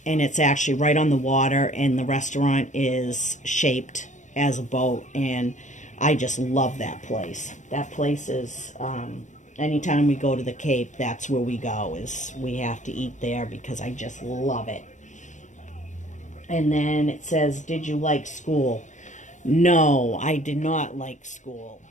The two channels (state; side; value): late; right; 0.35 ms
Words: And it's actually right on the water. And the restaurant is shaped as a boat. And I just love that place. That place is... anytime we go to the Cape, that's where we go, is we have to eat there because I just love it. And then it says, did you like school? No, I did not like school.